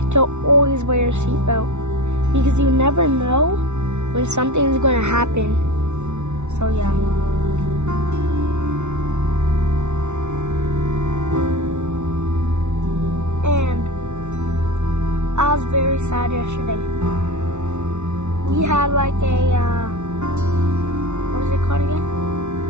to always wear your seatbelt because you never know when something is going to happen. So yeah. And I was very sad yesterday. We had like a what is it called again?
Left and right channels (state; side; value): late; left; 0.82 ms